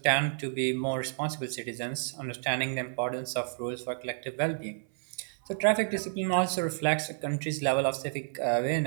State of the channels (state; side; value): silent; left; 58 dB below the other